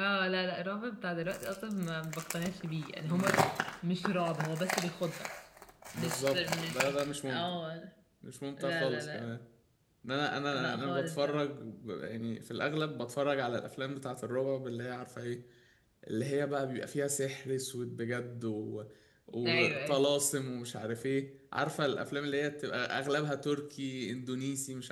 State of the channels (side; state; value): both; identical; correlation 1.00